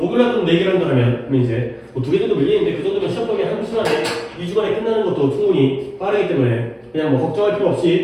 날 또 4개를 한다면 그러면 이제 뭐 2개 정도 밀리는데 그 정도면 시험 범위 한 주 안에 2주 만에 끝나는 것도 충분히 빠르기 때문에 그냥 뭐 걱정할 필요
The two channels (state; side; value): identical; both; correlation 1.00